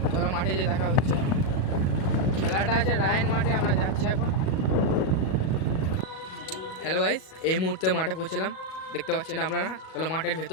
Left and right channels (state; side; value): late; right; 37 ms